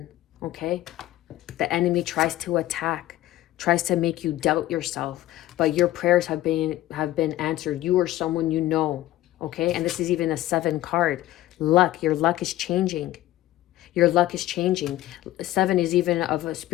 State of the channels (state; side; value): quieter; right; 15.1 dB